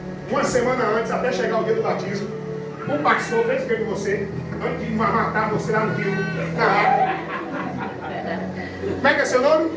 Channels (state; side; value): identical; both; correlation 1.00